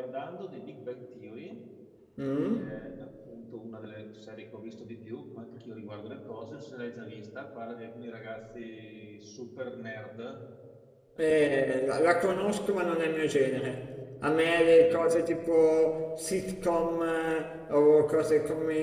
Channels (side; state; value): both; identical; correlation 1.00